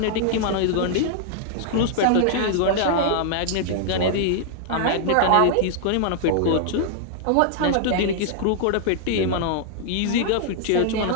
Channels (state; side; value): different; both; correlation -0.01